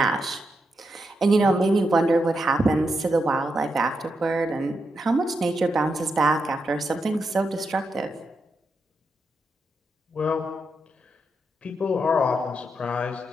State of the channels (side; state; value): both; normal; correlation 0.84